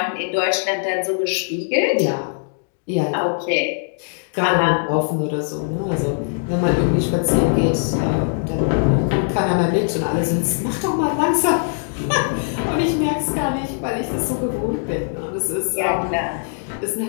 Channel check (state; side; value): silent; right; digital silence